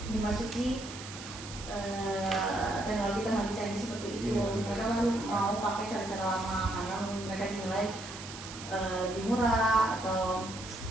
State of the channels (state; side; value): noise; right; hiss, 12 dB below the sound